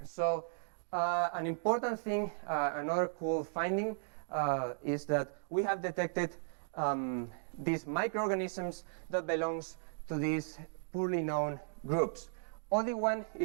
So an important thing, another cool finding, is that we have detected these microorganisms that belongs to these poorly known groups. Only one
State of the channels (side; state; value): left; silent; digital silence